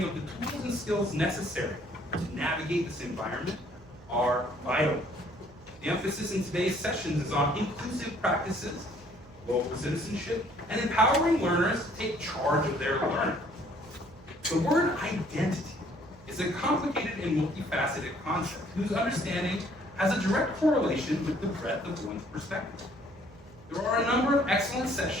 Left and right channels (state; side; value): noise; right; hum, 23 dB below the sound